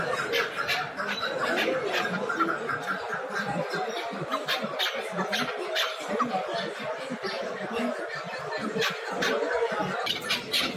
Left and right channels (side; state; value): both; identical; correlation 1.00